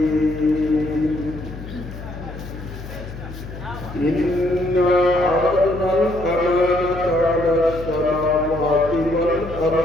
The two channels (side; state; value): left; noise; hum, 12 dB below the sound